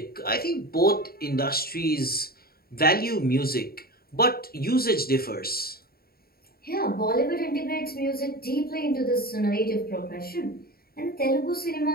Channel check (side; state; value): right; late; 0.44 ms